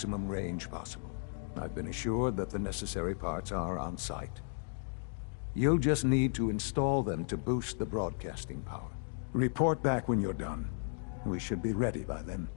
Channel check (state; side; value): silent; right; digital silence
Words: range possible. I've been assured that the necessary parts are on site. You'll just need to install them to boost the broadcasting power. Report back when you're done. We should be ready by then.